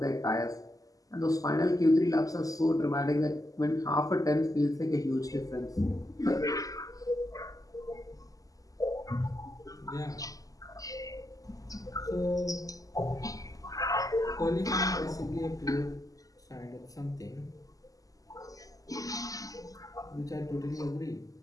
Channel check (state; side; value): late; right; 0.17 ms